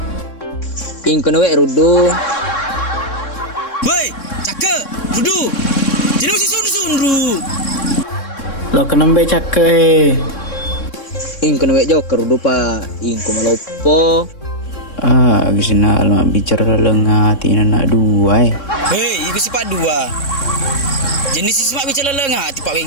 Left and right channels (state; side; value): late; right; 3.6 ms